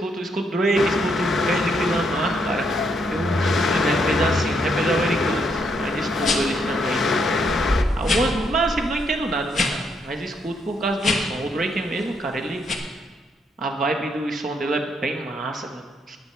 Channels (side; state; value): both; normal; correlation 0.75